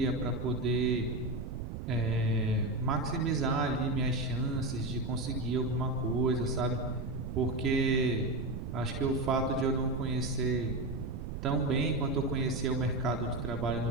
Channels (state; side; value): noise; right; rumble, 6 dB below the sound